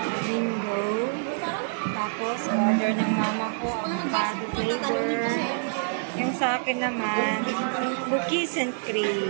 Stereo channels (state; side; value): silent; left; digital silence